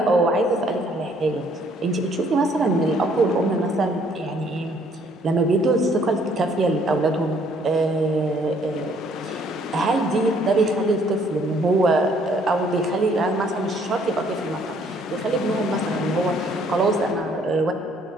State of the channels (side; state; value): both; normal; correlation 0.63